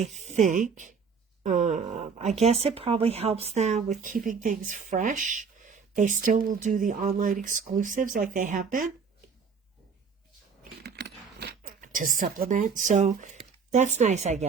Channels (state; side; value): quieter; left; 5.8 dB